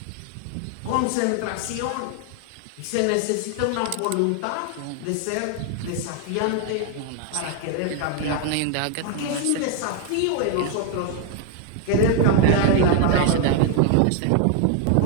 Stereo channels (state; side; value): different; both; correlation 0.01